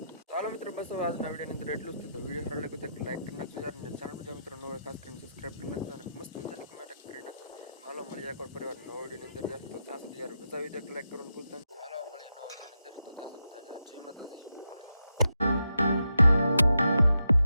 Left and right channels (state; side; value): inverted; both; correlation -0.85